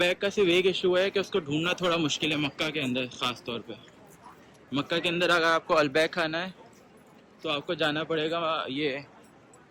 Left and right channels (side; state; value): both; identical; correlation 1.00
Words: का सिर्फ एक इशू है कि उसको ढूंढना थोड़ा मुश्किल है मक्का के अंदर। ख़ास तौर पे मक्का के अंदर अगर आपको अलबैक खाना है तो आपको जाना पड़ेगा, ये